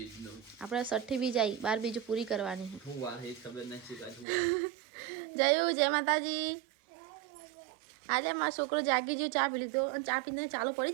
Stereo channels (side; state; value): left; drops out; at 4.2 s